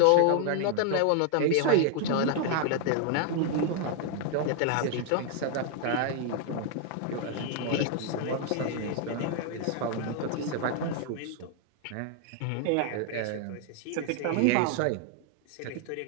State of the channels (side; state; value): both; different; correlation 0.00